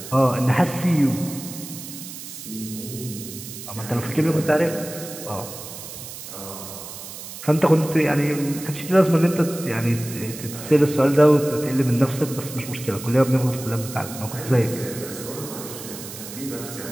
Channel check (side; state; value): right; noise; hiss, 12 dB below the sound